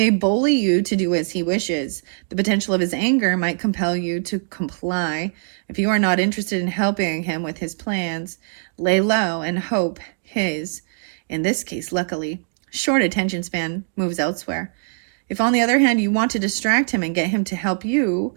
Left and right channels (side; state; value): left; silent; digital silence